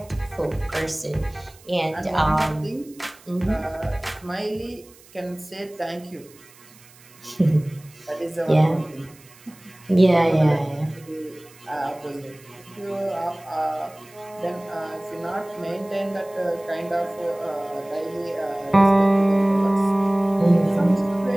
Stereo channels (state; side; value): noise; right; hiss, 25 dB below the sound